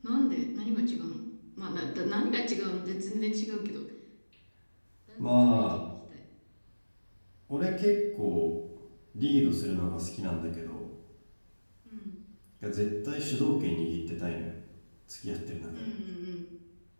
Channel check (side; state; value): both; inverted; correlation -1.00